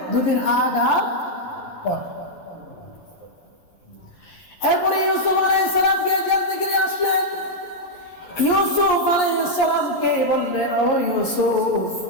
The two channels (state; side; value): late; right; 11 ms